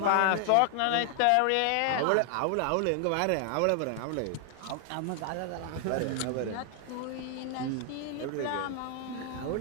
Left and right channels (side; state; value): both; different; correlation 0.00